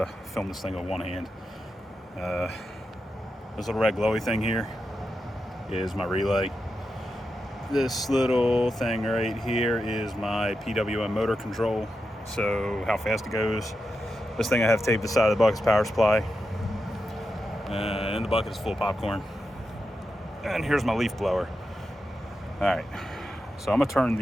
film this thing with one hand. This little red glowy thing here is my relay. This little thing right here is my PWM motor control, so how fast it goes. This thing I have taped to the side of the bucket's power supply. And the bucket is full of popcorn. And here's my leaf blower. All right, so I'm gonna turn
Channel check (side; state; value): both; normal; correlation 0.88